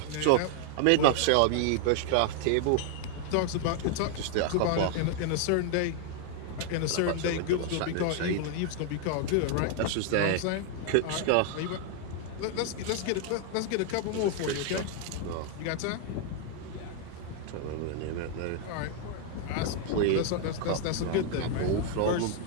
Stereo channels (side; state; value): both; different; correlation 0.00